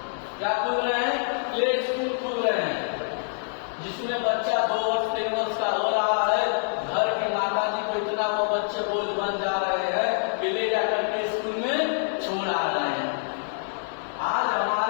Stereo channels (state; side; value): silent; right; 61 dB below the other